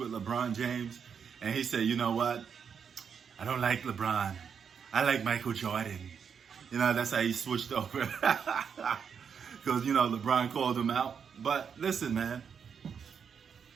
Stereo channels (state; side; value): quieter; left; 6.9 dB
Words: LeBron James. And he said, you know what? I don't like LeBron. I like Michael Jordan. You know, that's how he switched over. Because, you know, LeBron called him out. But listen, man.